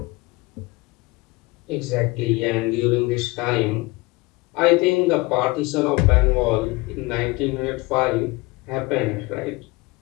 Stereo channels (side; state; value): right; quieter; 23.7 dB